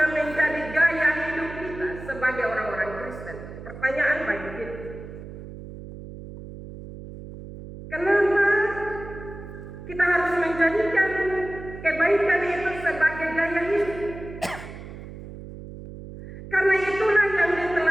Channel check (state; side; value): noise; right; hum, 13 dB below the sound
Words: menjadi gaya hidup kita sebagai orang-orang Kristen. Pertanyaan bagi kita, kenapa kita harus menjadikan kebaikan itu sebagai gaya hidup? Karena itulah yang